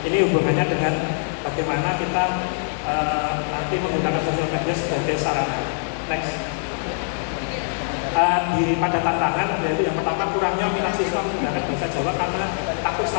Ini hubungannya dengan bagaimana kita nanti menggunakan sosial media sebagai sarana. Next. Pada tantangan, yaitu yang pertama, kurangnya minat siswa menggunakan bahasa Jawa karena takut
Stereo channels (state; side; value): silent; right; digital silence